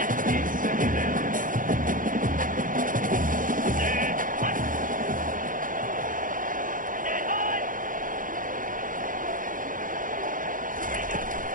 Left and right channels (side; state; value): left; late; 0.39 ms